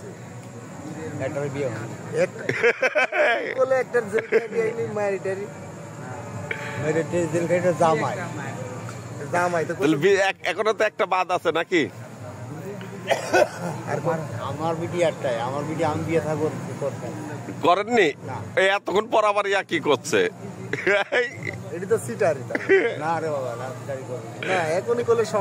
একটার বিয়ে হয়নি বলে একটার জেল খাই নি ম্যারিটারি জেল খাইটা জামাই তো এখনো তো একটা বাদ আছে নাকি আমার বিটি একটাই আমার বিটি আমি বিয়ে থাকবো করতাম করেননি এই এতক্ষণ পর আবার ইয়া কি করছে এটা তো সিটারি না রে বাবা না সিটারি করবে না এখনই করলে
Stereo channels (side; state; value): both; identical; correlation 1.00